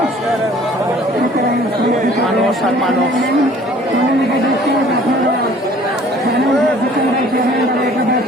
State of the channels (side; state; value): both; normal; correlation 0.52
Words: মানুষ আর মানুষ।